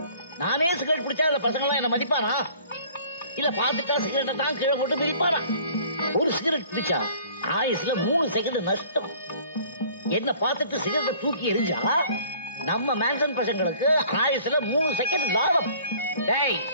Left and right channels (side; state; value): both; inverted; correlation -0.52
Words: நானே சிகரெட் பிடிச்சா அந்த பசங்க எல்லாம் என்ன மதிப்பானா? இல்ல பாத்துட்டா சிகரெட்டை தான் கீழே போட்டு மிதிப்பானா? ஒரு சிகரெட் பிடிச்சா ஆயுசுல 3 செகண்ட் நஷ்டம். என்ன பார்த்துட்டு சிகரெட்டை தூக்கி எரிஞ்சா நம்ம மேன்சன் பசங்களுக்கு ஆயுசுல 3 செகண்ட் லாபம். டேய்,